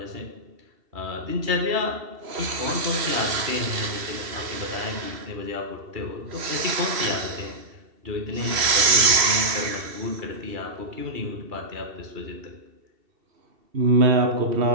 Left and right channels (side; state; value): left; late; 3.0 ms